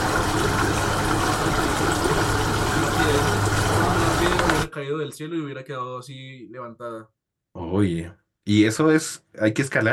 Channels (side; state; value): both; identical; correlation 1.00